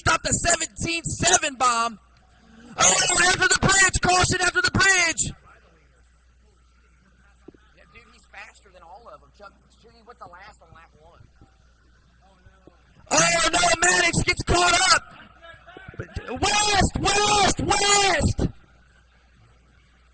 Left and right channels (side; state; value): both; identical; correlation 1.00